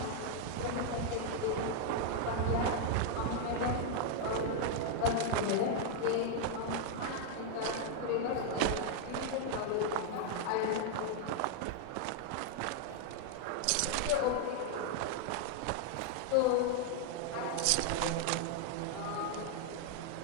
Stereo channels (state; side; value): different; both; correlation 0.00